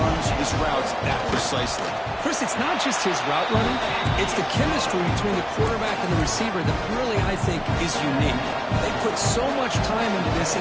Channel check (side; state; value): both; identical; correlation 1.00